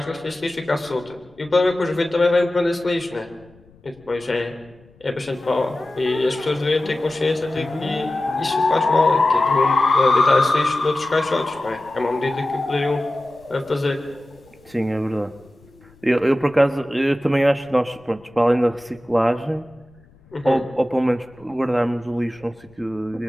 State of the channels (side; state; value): left; noise; rumble, 28 dB below the sound